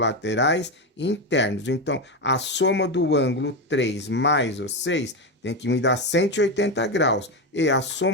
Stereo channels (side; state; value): both; normal; correlation 0.13